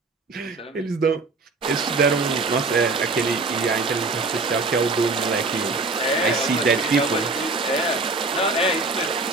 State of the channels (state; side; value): quieter; left; 3.6 dB